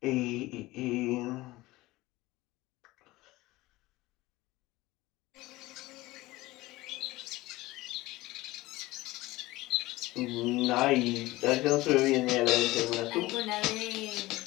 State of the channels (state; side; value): quieter; right; 19.1 dB